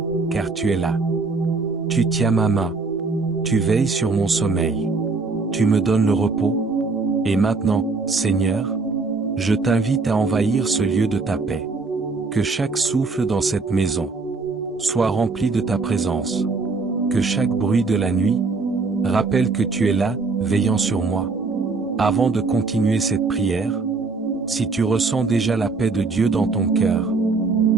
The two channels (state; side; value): quieter; left; 4.0 dB